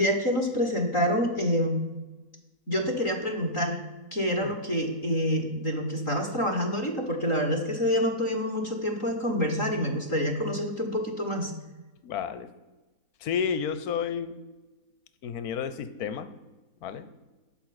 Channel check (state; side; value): late; right; 3.8 ms